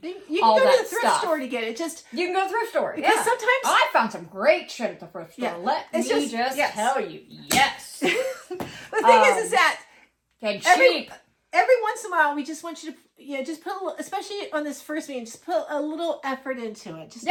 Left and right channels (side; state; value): both; identical; correlation 1.00